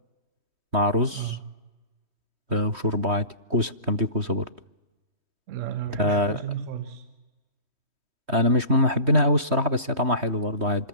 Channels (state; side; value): late; left; 3.1 ms